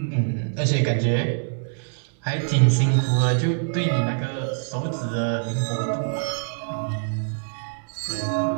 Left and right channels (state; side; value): silent; left; digital silence